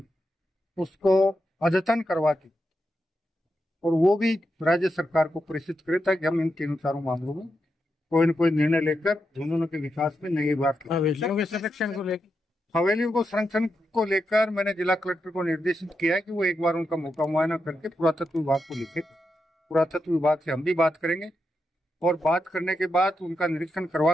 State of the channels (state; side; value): normal; both; correlation 0.86